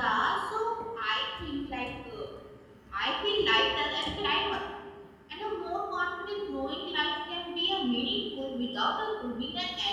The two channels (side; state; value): both; identical; correlation 1.00